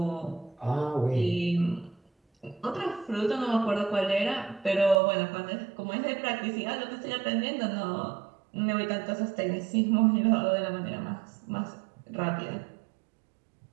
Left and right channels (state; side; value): drops out; left; at 5.0 s